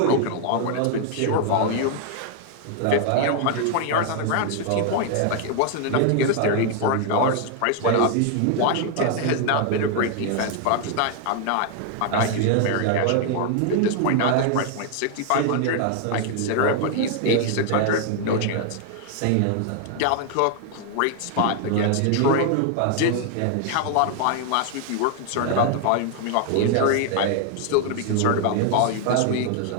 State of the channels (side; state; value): both; different; correlation 0.00